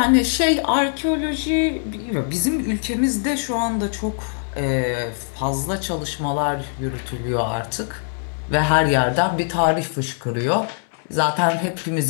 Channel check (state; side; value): silent; right; 64 dB below the other